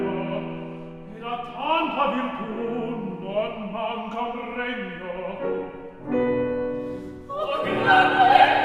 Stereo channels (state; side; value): identical; both; correlation 1.00